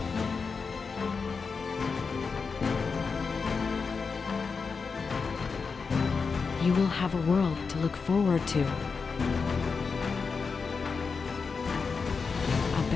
You will have a world to look forward to. A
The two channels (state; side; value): quieter; right; 5.1 dB